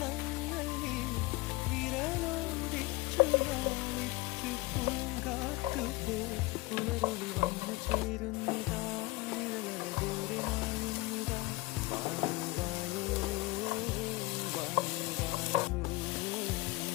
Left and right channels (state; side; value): quieter; right; 21.3 dB